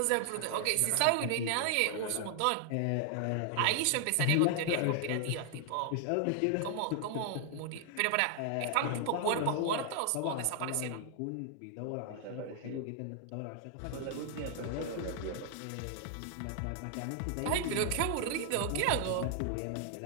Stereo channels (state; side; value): different; both; correlation 0.00